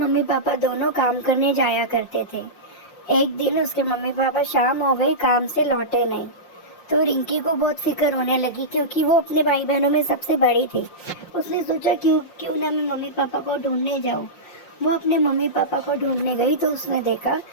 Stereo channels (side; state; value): right; late; 5.7 ms